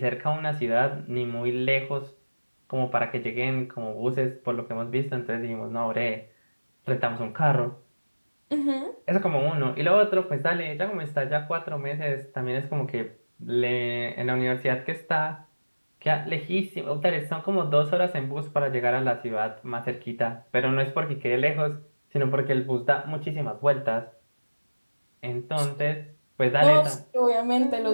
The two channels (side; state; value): both; inverted; correlation -1.00